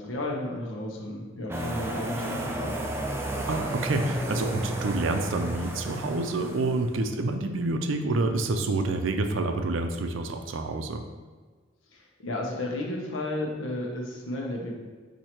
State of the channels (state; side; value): normal; both; correlation 0.49